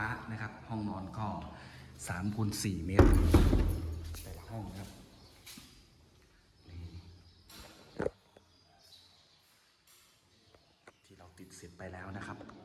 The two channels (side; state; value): both; identical; correlation 1.00